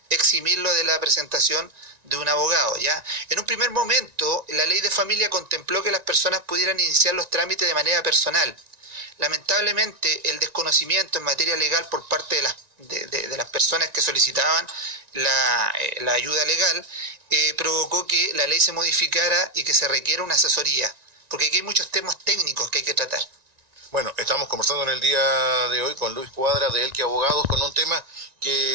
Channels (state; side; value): late; left; 1.9 ms